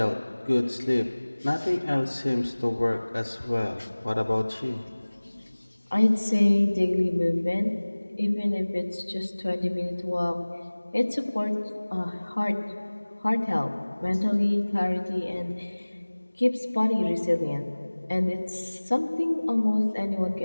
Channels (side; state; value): both; inverted; correlation -1.00